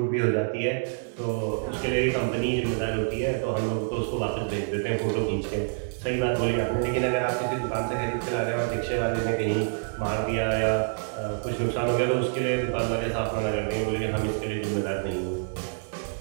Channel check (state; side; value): silent; left; digital silence